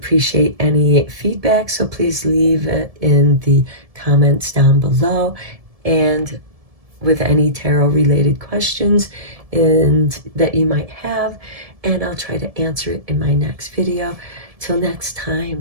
any feedback, so please leave it in the comments down below. And with any tarot related questions that you might have, and I'll try to answer it in my next video. Till next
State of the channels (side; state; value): left; late; 1.7 ms